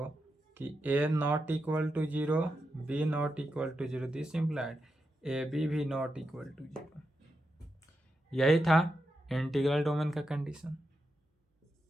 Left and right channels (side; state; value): both; normal; correlation 0.87